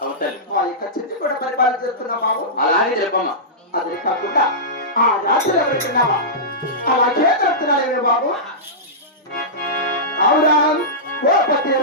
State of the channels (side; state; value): both; normal; correlation -0.16